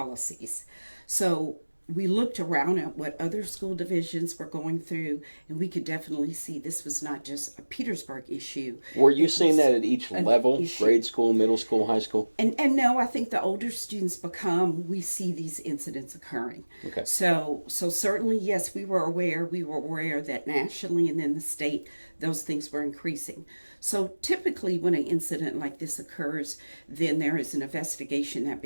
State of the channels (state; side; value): inverted; both; correlation -1.00